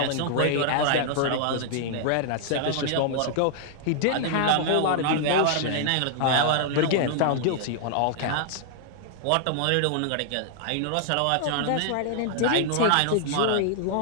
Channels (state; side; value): different; both; correlation -0.01